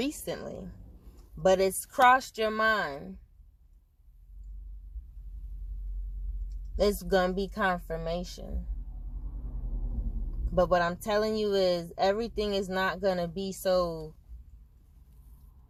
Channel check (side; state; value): both; identical; correlation 1.00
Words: but it's crossed your mind. It's going to be confirmation. But what I'm telling you is everything is not going to be so